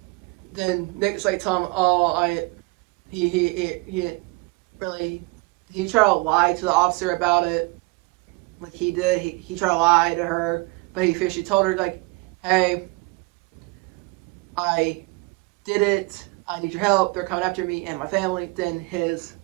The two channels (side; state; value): left; quieter; 26.5 dB